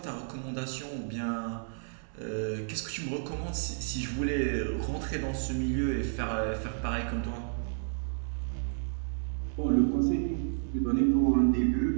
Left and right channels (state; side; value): silent; left; 57 dB below the other